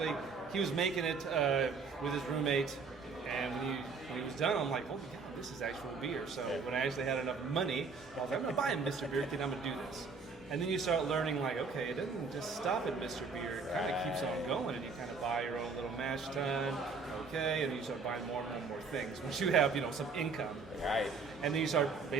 he was making it with his roommate. And when he was done, I'm like, oh my God, this is actual beer. So when I actually had enough money, I was like, I'm going to buy a Mr. Beer kit. I'm going to do this. And then you start learning, like, okay, it doesn't just stop at Mr. Beer. It kind of keeps on going, and you kind of buy your own little mash tun, okay, and then you start buying more and more things once you have, some income. Right. And then you start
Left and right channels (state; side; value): quieter; left; 4.6 dB